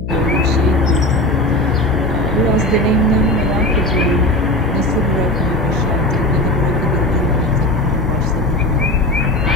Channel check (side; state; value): left; noise; hum, 7 dB below the sound